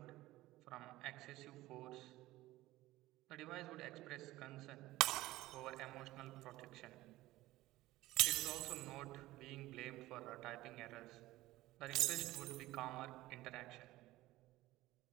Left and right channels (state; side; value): quieter; left; 17.2 dB